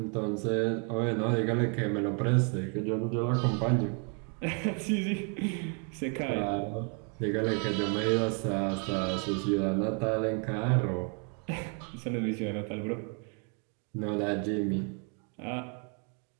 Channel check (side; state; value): left; quieter; 39.0 dB